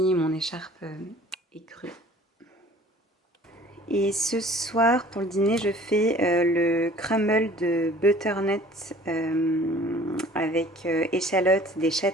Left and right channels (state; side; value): normal; both; correlation 0.50